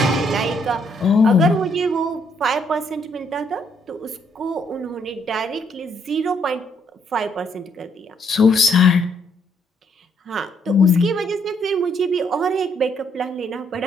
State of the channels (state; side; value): normal; both; correlation 0.71